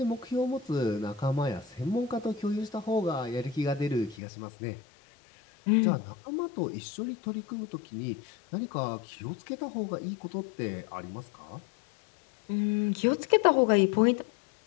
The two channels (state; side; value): drops out; right; at 4.2 s